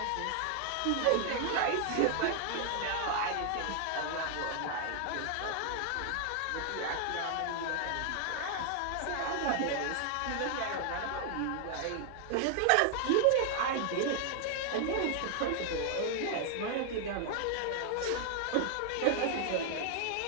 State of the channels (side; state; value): both; different; correlation 0.00